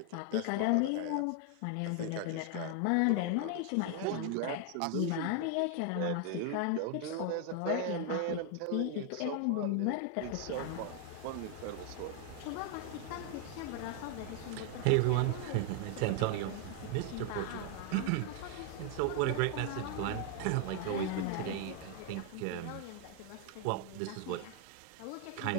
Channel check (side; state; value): both; different; correlation 0.00